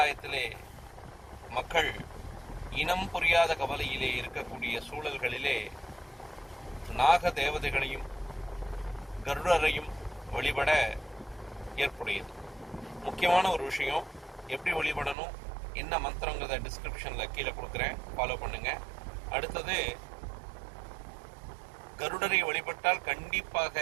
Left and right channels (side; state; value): left; drops out; at 15.2 s